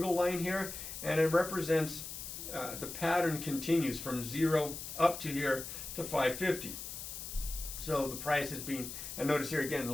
line here, and it represents the pattern continues from 0 up to here to 550. So the price is being, and notice here again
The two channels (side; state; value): left; noise; hiss, 8 dB below the sound